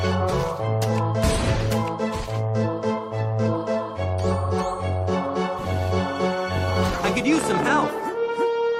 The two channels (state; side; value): identical; both; correlation 1.00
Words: I could use some help.